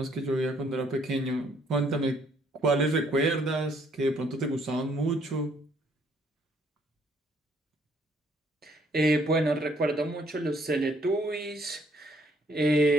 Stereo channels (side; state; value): both; normal; correlation 0.66